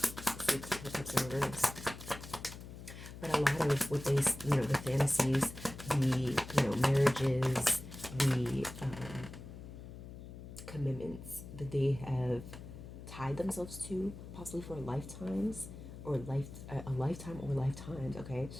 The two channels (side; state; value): left; noise; hum, 13 dB below the sound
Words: Six of Cups in reverse. But a lot of what they, the fantasies, the, marriages, the commitments that they have tied themselves to, possibly for lifetimes, or a lifetime or lifetimes, okay,